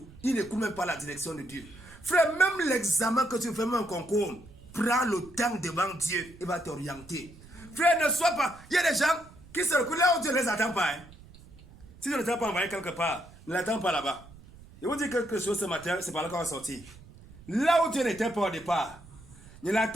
Ils n'écoutent même pas la direction de Dieu. Frère, même l'examen que tu fais, même un concours, prends le temps devant Dieu. Il va t'orienter. Frère, ne sois pas... Il y a des gens qui se reculent là où Dieu ne les attend pas. Hein. Si tu ne t'as pas envoyé quelque part, ne l'attends pas là-bas. Je vous dis quelque chose ce matin, c'est par là qu'on va sortir. Là où Dieu n'était pas au départ, ne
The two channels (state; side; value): noise; right; rumble, 21 dB below the sound